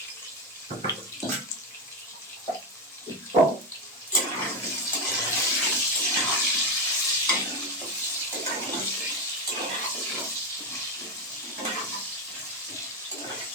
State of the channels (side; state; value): both; normal; correlation 0.11